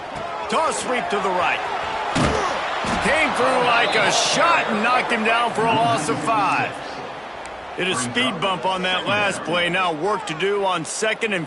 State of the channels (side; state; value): both; identical; correlation 1.00